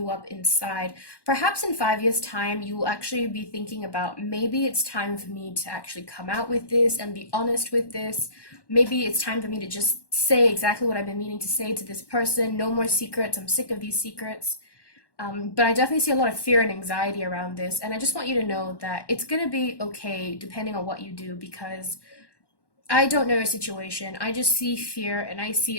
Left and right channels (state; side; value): late; right; 1.1 ms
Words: up inside. Perhaps in 5 years' time, you will actually be thinking about, maybe it's time for me to actually come out with this and be honest with this. Maybe it's time for me to just say exactly what I've been meaning to say to this person. No more secrets. I'm sick of these secrets. But I definitely see a lot of fear and anxiety around this. And I just want you to know that it's going to be okay depending on what you do, because I don't know your situation. I just see fear, and I see